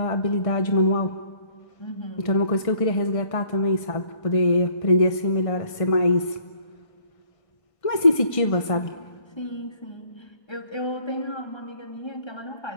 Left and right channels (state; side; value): late; right; 1.5 ms